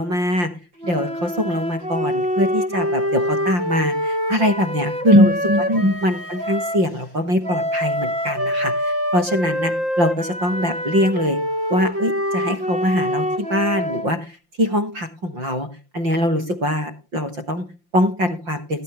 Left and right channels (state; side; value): late; left; 5.7 ms